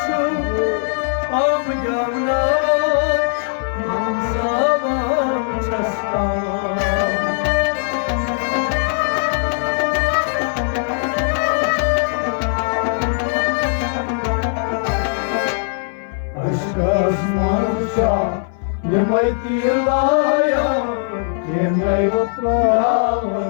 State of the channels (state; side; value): silent; right; 60 dB below the other